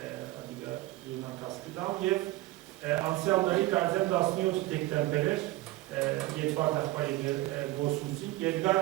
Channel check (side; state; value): left; quieter; 17.9 dB